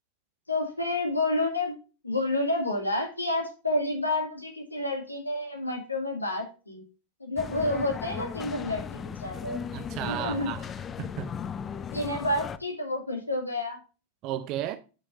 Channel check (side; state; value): both; inverted; correlation -0.44